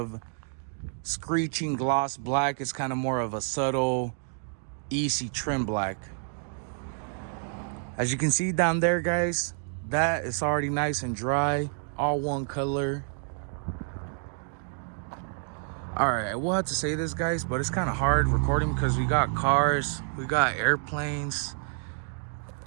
screeching gloss black. It's kind of more of a subtle, easy trim black. As you can see down there, guys, that is already nice and dry, all one color. All right, I will have to say this, guys, but it's kind of hard recording because we got cars, we got airplanes.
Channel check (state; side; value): silent; left; 59 dB below the other